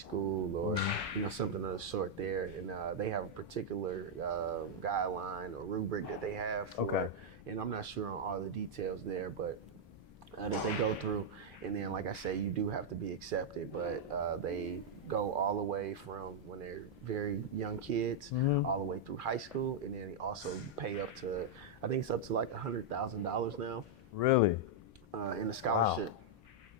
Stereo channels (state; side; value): normal; both; correlation -0.03